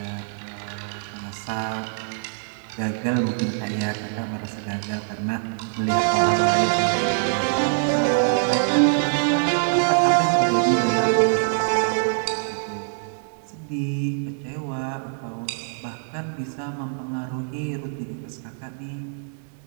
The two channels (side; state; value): left; silent; digital silence